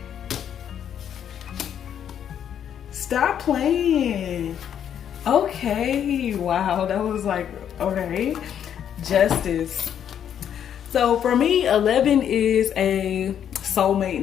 Stop playing. Okay. Wow. That was like, okay. Justice. So for me, 11 is a soulmate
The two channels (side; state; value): right; quieter; 9.2 dB